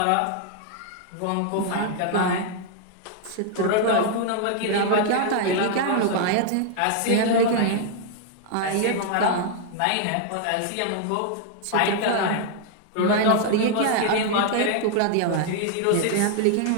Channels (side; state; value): both; different; correlation 0.00